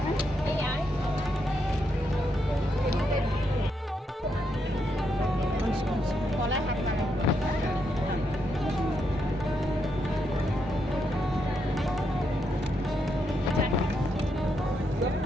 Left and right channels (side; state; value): both; normal; correlation 0.80